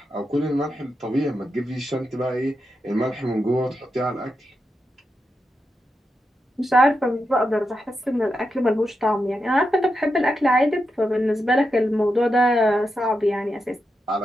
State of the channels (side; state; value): both; normal; correlation 0.87